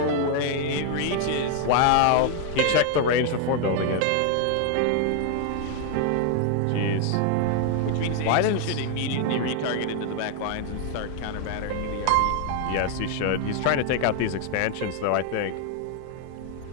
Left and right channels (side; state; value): both; different; correlation 0.00